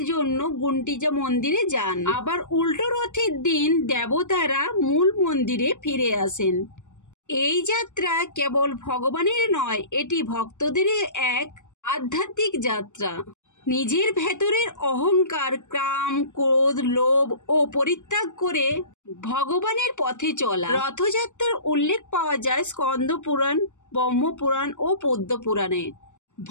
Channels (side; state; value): right; late; 0.85 ms